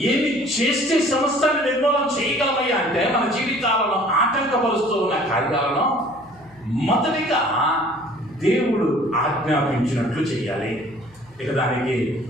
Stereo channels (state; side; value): noise; left; hum, 28 dB below the sound